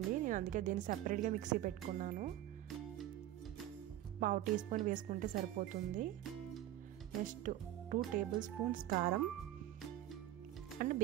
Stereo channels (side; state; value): left; quieter; 13.3 dB